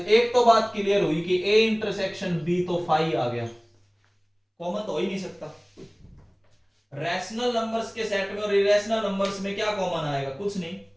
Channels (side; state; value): both; identical; correlation 1.00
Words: तो बात क्लियर हुई कि ए इंटरसेक्शन बी तो फाई आ गया, कॉमन तो हो ही नहीं सकता। रैशनल नंबर्स के सेट में और इरेशनल नंबर्स में क्या कॉमन आएगा? कुछ नहीं।